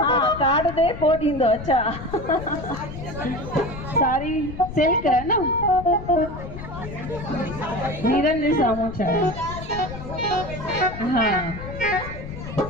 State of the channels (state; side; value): noise; left; rumble, 10 dB below the sound